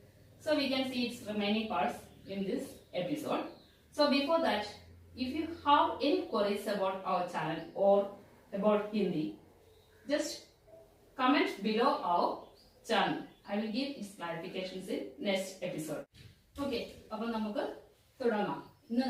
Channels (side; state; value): both; identical; correlation 1.00